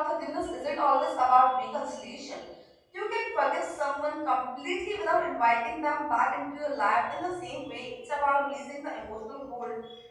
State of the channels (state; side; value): identical; both; correlation 1.00